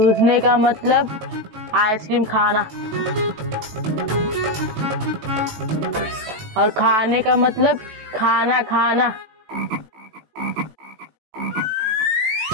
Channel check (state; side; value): late; left; 18 ms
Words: का मतलब आइसक्रीम खाना और खाने का मतलब खाना खाना।